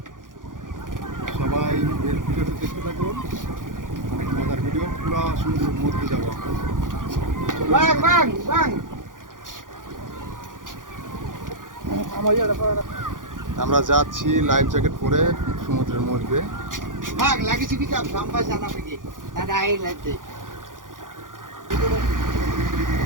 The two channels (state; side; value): late; left; 0.89 ms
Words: সবাই ভিডিওটা দেখতে থাকুন, অনেক মজার ভিডিও। পুরো সমুদ্রের মধ্যে যাবো আমরা যাচ্ছি লাইফ জ্যাকেট পরে সমুদ্রের মধ্যে।